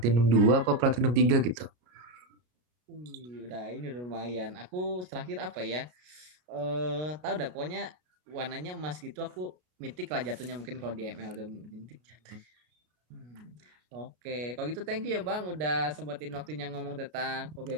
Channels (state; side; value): late; left; 33 ms